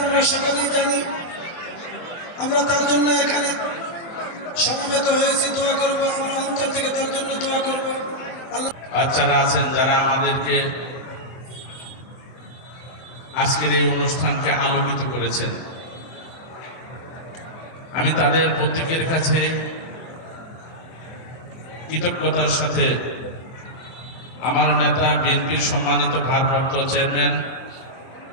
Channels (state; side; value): late; right; 23 ms